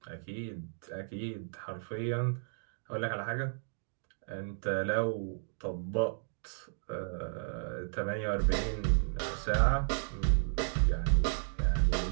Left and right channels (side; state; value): left; silent; digital silence